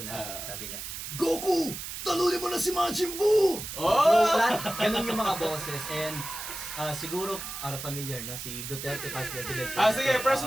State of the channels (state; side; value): noise; right; hiss, 8 dB below the sound